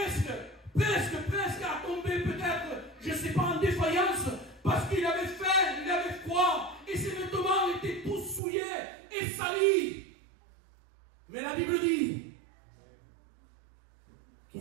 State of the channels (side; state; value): left; drops out; at 8.4 s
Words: à tomber peut-être, je ne sais pas, en défaillance, parce qu'il avait faim, il avait froid, et ses vêtements étaient tous souillés et salis. Mais la Bible dit